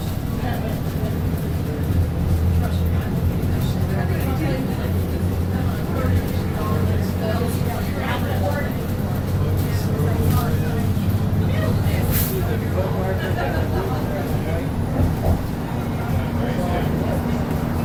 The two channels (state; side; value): identical; both; correlation 1.00